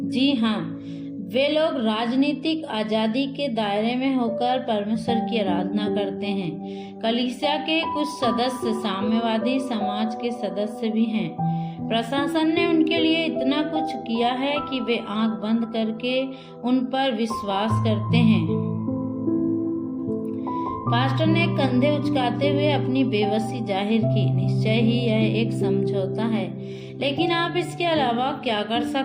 जी हाँ, वे लोग राजनीतिक आजादी के दायरे में होकर परमेश्वर की आराधना करते हैं। कलीसिया के कुछ सदस्य साम्यवादी समाज के सदस्य भी हैं। प्रशासन ने उनके लिए इतना कुछ किया है कि वे आंख बंद करके उन पर विश्वास करते हैं। पास्टर ने कंधे उचकाते हुए अपनी बेबसी जाहिर की। निश्चय ही यह एक समझौता है, लेकिन आप इसके अलावा क्या कर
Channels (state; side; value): identical; both; correlation 1.00